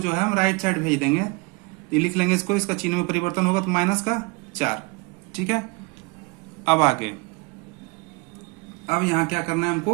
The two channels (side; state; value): left; quieter; 28.3 dB